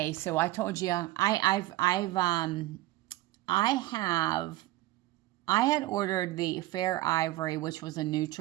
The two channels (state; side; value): quieter; left; 17.0 dB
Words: so I told you I had ordered the Fair Ivory, which was a